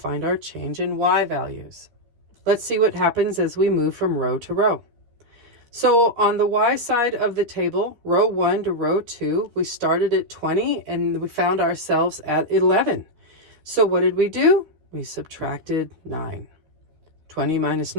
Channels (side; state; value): left; late; 13 ms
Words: our change in y values. Let's see what happens as we move from row to row. So on the y side of the table, row 1 to row 2, we started at 20 and we found ourselves at 11. So what did we do? We subtracted 9. 20 minus